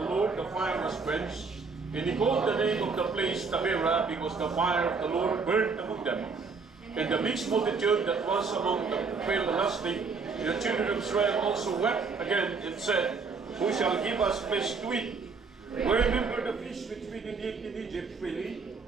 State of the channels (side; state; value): left; quieter; 4.8 dB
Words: Lord, the fire was quenched. And he called the name of the place Taberah, because the fire of the Lord burned among them. And the mixed multitude that was among them fell lusting. And the children of Israel also wept again, and said, Who shall give us flesh to eat? We remember the fish which we did eat in Egypt freely,